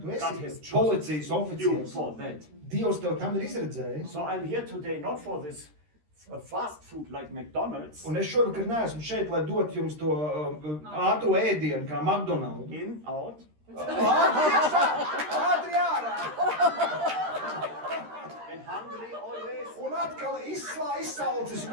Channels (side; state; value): left; late; 13 ms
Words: tu God has esi chosen policijas you oficieris. for that. Dievs tev tam ir izredzējis. So I'm here today not for this fast food like McDonald's. Un es šovakar neesmu šeit, lai dotu jums to ātru ēdienu, kā McDonald's. In, out. Ātri iekšā, ātri ārā. And hungry always. Un atkal izsalcis un